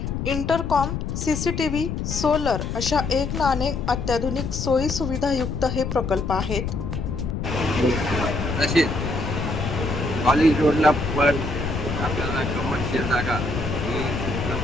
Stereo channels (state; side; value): noise; left; rumble, 3 dB below the sound